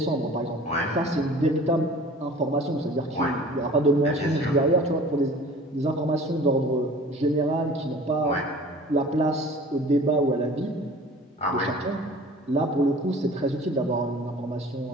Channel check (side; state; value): both; normal; correlation 0.45